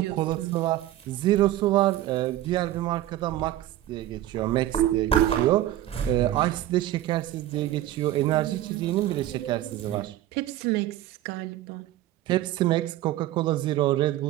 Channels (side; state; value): left; quieter; 13.9 dB